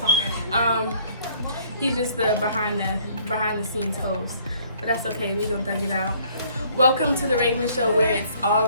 He's just the behind the scenes host, but that's okay. We gonna thug it out. Welcome to the Raven Show, where it's all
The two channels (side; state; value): both; inverted; correlation -0.60